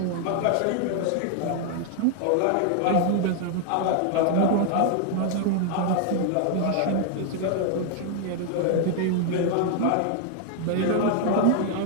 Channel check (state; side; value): different; both; correlation 0.00